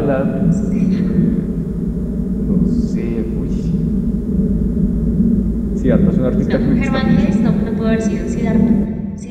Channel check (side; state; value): both; identical; correlation 1.00